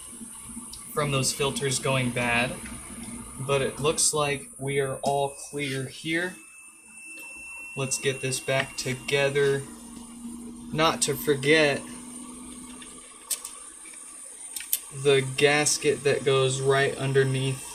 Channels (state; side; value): identical; both; correlation 1.00